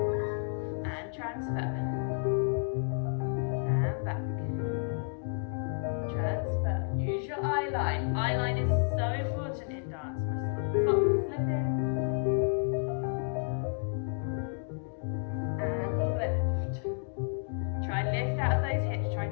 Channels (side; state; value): right; silent; 57 dB below the other